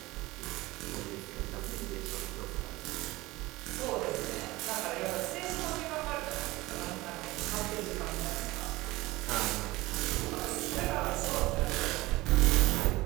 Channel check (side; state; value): left; quieter; 19.9 dB